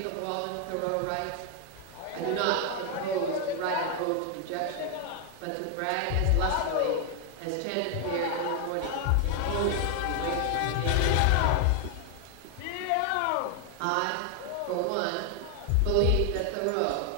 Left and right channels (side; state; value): both; different; correlation 0.00